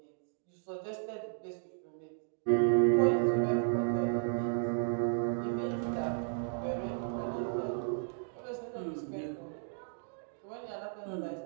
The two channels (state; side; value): silent; left; digital silence